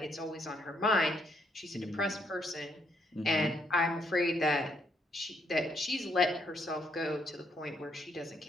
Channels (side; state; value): both; normal; correlation 0.73